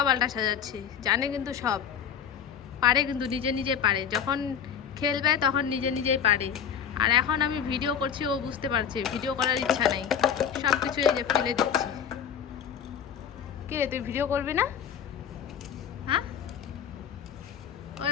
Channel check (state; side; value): quieter; right; 8.0 dB